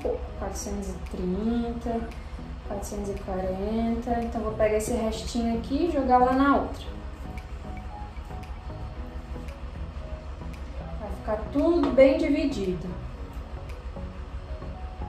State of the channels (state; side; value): identical; both; correlation 1.00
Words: 430, 440, então vou pegar esse restinho aqui e jogar lá na outra. ficar tudo bem dividido.